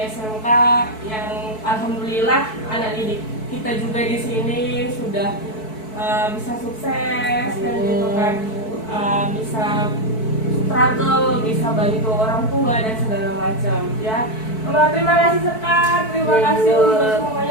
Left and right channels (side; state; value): right; late; 4.6 ms